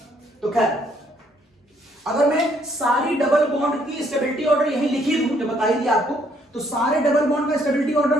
तो खैर, अगर मैं सारी डबल बॉन्ड की स्टेबिलिटी ऑर्डर यही लिखी दूं, जो बताई थी आपको, तो सारे डबल बॉन्ड का स्टेबिलिटी ऑर्डर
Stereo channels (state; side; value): normal; both; correlation 0.68